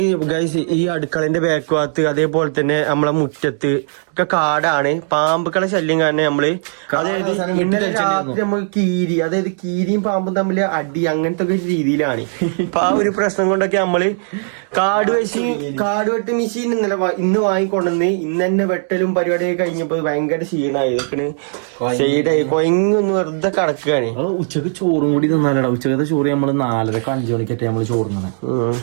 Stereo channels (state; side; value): silent; left; 64 dB below the other